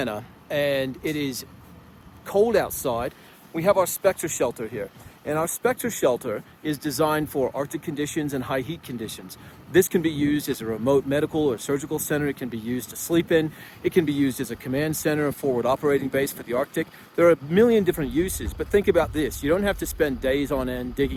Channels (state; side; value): identical; both; correlation 1.00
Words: and it is cold outside. We have our Spectre Shelter here, and our Spectre Shelter is designed for Arctic conditions and high heat conditions. This can be used as a remote medical or surgical center. It can be used to sleep in. It can be used as a command center, a forward operating base for the Arctic. There are a million different uses, but think about this. You don't have to spend days on end